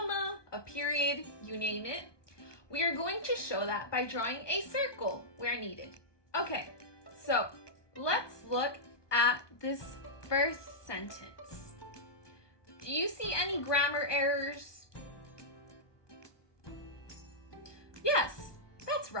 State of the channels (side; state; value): right; late; 1.2 ms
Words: a period, you name it, we are going to show that by drawing a circle where needed. Okay, so let's look at this first sentence. Do you see any grammar errors? Yes, that's